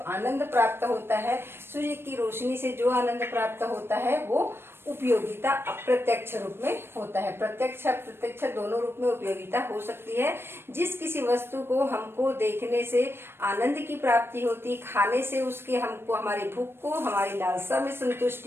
प्राप्त होता है, सूर्य की रोशनी से जो आनंद प्राप्त होता है वो उपयोगिता अप्रत्यक्ष रूप में होता है। प्रत्यक्ष अप्रत्यक्ष दोनों रूप में उपयोगिता हो सकती है। जिस किसी वस्तु को हमको देखने से आनंद की प्राप्ति होती, खाने से उसके हमको हमारी भूख को, हमारी लालसा में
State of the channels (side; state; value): left; late; 0.11 ms